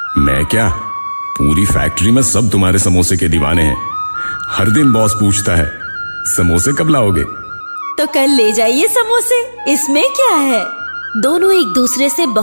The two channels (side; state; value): both; inverted; correlation -1.00